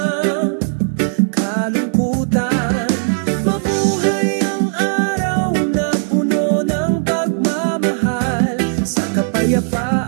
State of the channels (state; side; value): silent; left; digital silence